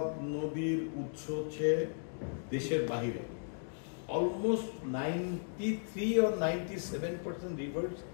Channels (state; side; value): silent; right; digital silence